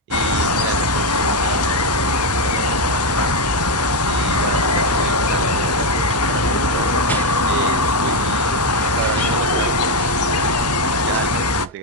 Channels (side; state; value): both; normal; correlation 0.06